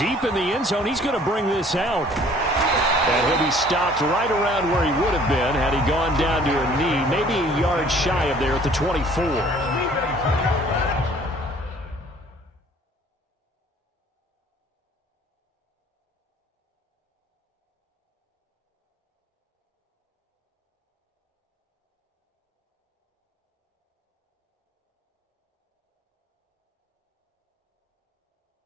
in the end zone, he's going to bring this out. And he'll be stopped right around where he would have been had he gone down to a knee, maybe a yard shy of there at the 24.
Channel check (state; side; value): normal; both; correlation 0.55